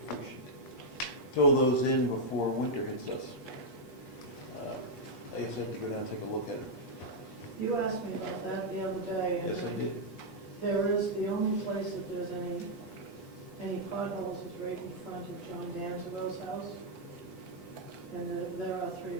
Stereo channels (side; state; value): right; late; 8.3 ms